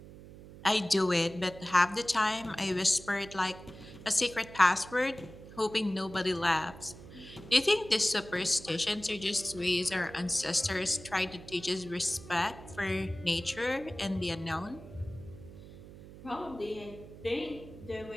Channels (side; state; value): right; noise; hum, 17 dB below the sound